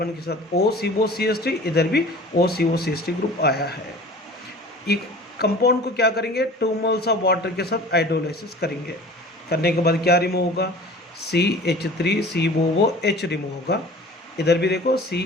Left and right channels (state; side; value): normal; both; correlation 0.42